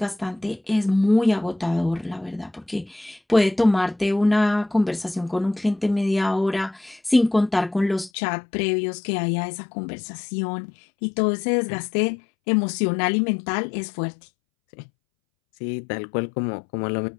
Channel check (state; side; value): drops out; right; at 8.1 s